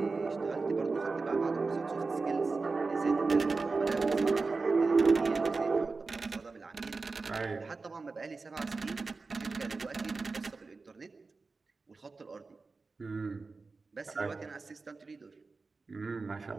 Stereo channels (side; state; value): left; quieter; 4.0 dB